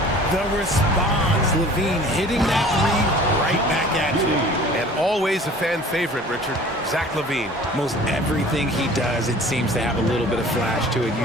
The response, Levine hitting that 3 right back at you. And always a fan favorite, Richard, Zach LaVine. Most everything he does, it seems to have a little bit of flash to it.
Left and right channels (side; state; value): both; normal; correlation 0.47